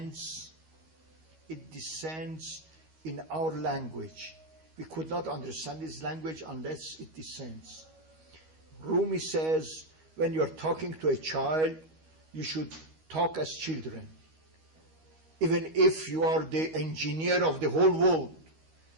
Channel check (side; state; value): left; late; 13 ms